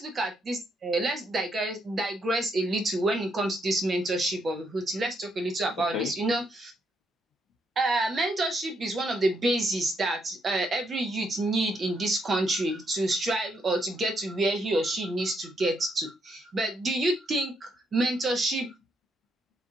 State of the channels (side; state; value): both; normal; correlation 0.76